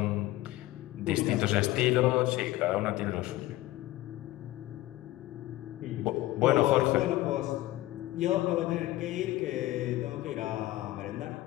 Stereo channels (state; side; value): quieter; right; 16.8 dB